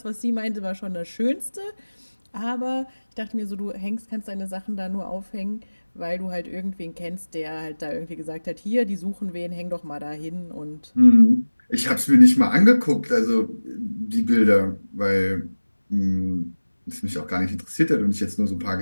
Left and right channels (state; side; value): inverted; both; correlation -1.00